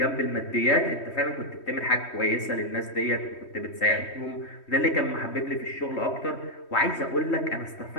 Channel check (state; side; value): late; right; 3.2 ms